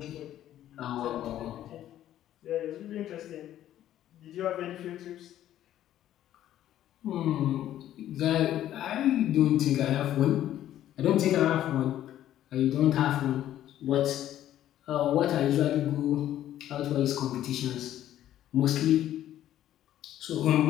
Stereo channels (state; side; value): quieter; right; 12.2 dB